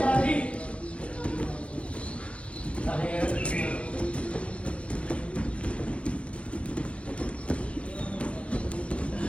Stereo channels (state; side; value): late; right; 0.061 ms